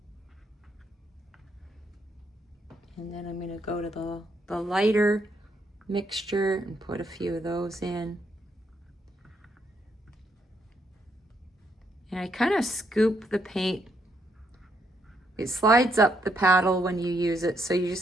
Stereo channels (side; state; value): both; normal; correlation 0.75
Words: then I'm going to go to the lighter mixture and put a few of those in. And I kind of scoop the paint. It slides up the paddle when you use it, so you